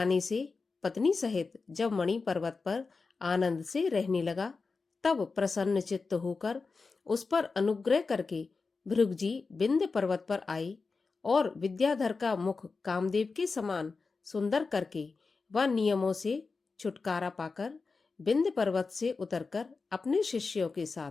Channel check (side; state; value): right; quieter; 4.3 dB